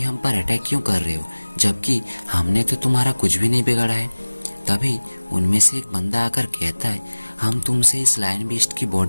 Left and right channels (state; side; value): inverted; both; correlation -1.00